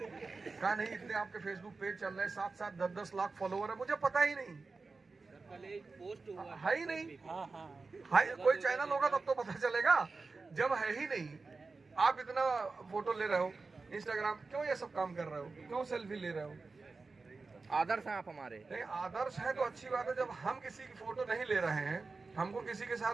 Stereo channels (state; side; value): quieter; left; 4.0 dB